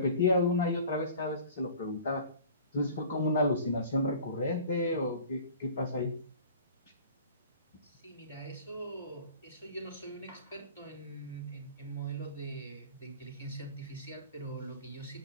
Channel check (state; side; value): inverted; both; correlation -0.44